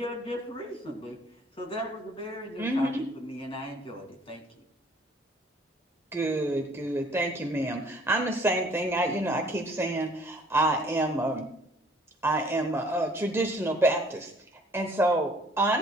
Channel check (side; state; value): both; normal; correlation 0.57